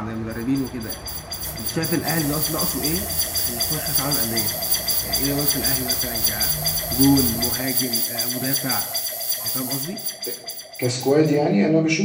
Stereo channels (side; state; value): both; identical; correlation 1.00